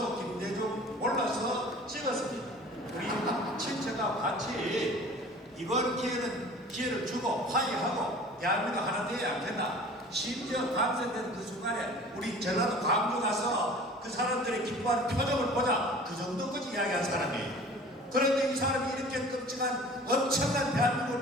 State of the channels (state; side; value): normal; both; correlation 0.44